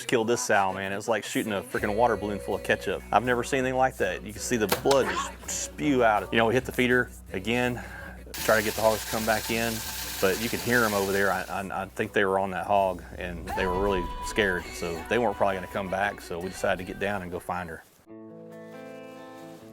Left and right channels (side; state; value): both; identical; correlation 1.00